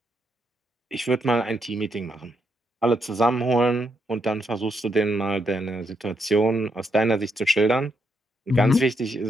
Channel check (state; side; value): normal; both; correlation 0.79